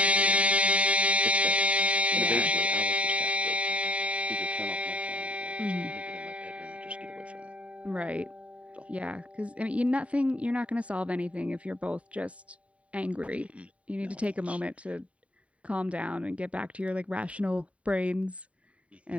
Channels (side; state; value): left; late; 0.065 ms